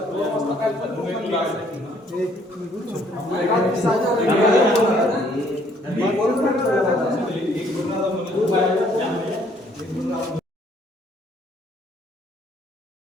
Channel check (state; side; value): normal; both; correlation 0.63